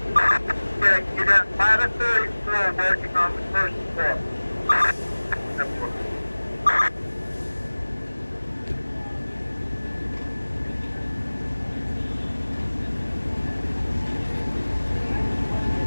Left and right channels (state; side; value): inverted; both; correlation -1.00